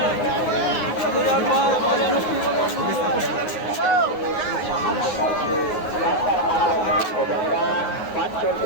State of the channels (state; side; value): late; right; 9.5 ms